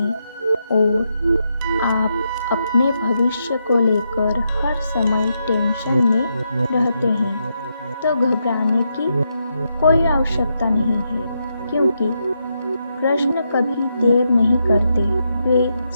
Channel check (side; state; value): both; inverted; correlation -0.82